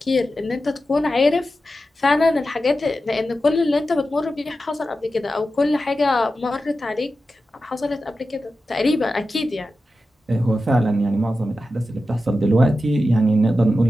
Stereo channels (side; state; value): both; normal; correlation 0.92